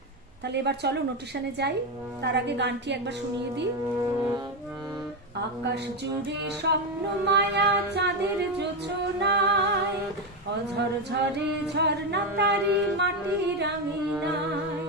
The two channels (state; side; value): normal; both; correlation 0.10